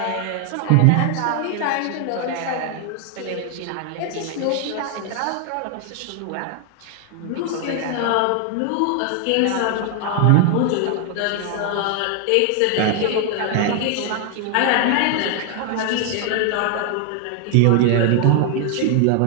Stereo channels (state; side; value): different; both; correlation 0.00